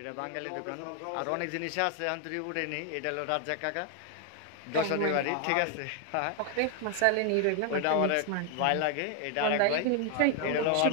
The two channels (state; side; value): different; both; correlation 0.00